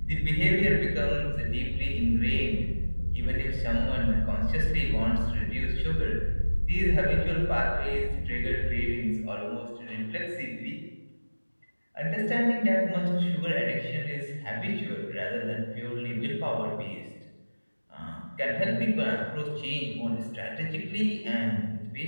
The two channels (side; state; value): both; inverted; correlation -1.00